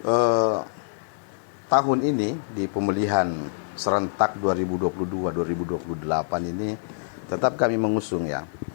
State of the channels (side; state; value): right; silent; digital silence